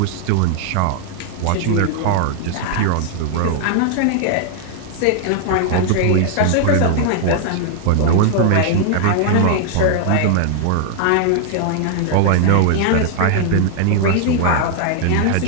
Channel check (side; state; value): both; different; correlation 0.00